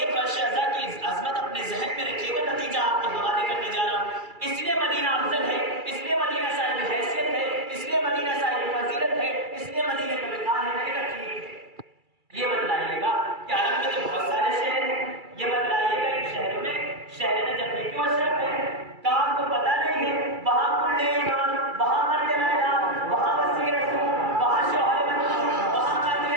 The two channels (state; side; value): late; left; 2.3 ms